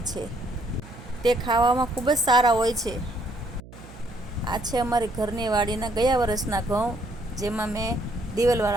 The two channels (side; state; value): right; noise; hum, 18 dB below the sound